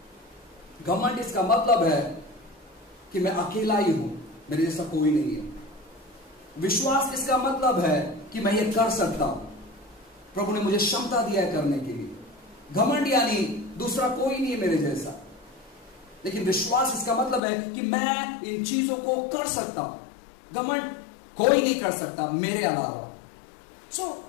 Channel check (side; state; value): right; drops out; at 17.4 s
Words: घमंड इसका मतलब है कि मैं अकेला ही हूं, मेरे जैसा कोई नहीं है। विश्वास इसका मतलब है कि मैं ये कर सकता हूं, प्रभु ने मुझे क्षमता दिया है करने के लिए। घमंड यानी दूसरा कोई नहीं है मेरे जैसा। लेकिन विश्वास इसका मतलब है कि मैं इन चीजों को कर सकता हूं। घमंड कोई नहीं कर सकता मेरे अलावा।